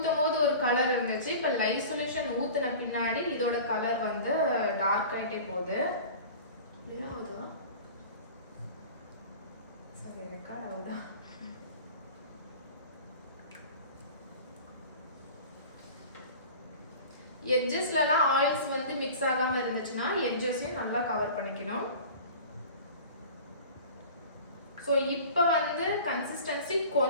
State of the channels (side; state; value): both; inverted; correlation -0.39